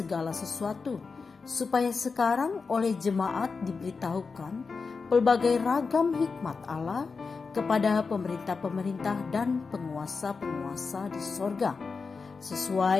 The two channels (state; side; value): quieter; right; 4.7 dB